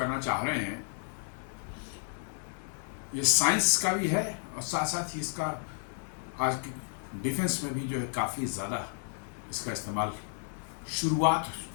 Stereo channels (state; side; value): silent; right; 56 dB below the other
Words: चाह रहे हैं। ये साइंस का भी है और साथ साथ ही इसका आज की डिफेंस में भी जो है काफ़ी ज़्यादा इसका इस्तेमाल शुरुआत